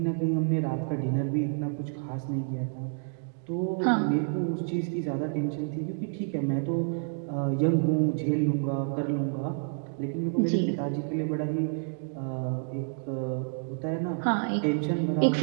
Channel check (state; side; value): silent; left; digital silence